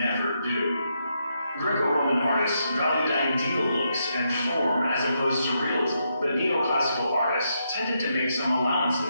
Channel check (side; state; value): both; inverted; correlation -0.80